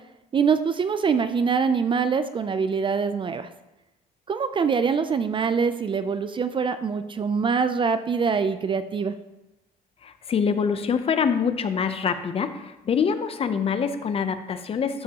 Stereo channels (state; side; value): normal; both; correlation 0.53